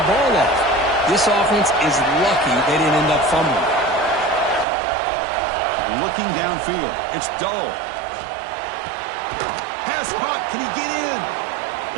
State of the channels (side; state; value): left; drops out; at 4.7 s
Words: ball off. This offense is lucky they didn't end up fumbling. Looking downfield. It's dull. Pass caught. Can he get in?